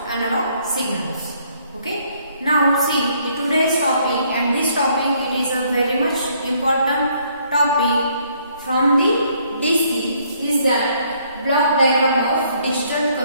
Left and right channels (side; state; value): both; inverted; correlation -0.66